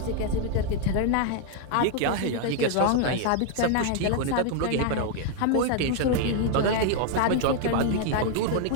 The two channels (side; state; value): both; different; correlation 0.00